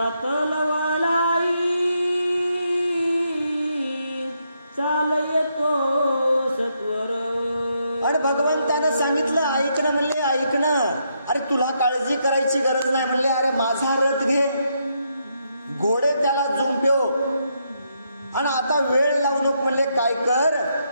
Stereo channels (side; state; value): both; inverted; correlation -0.78